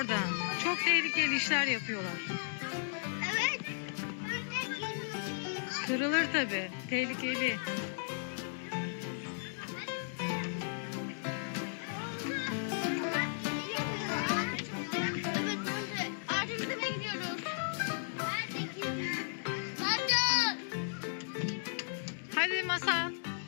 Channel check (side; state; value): right; silent; digital silence